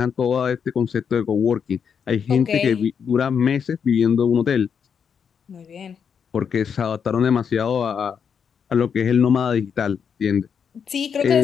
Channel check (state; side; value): quieter; right; 7.0 dB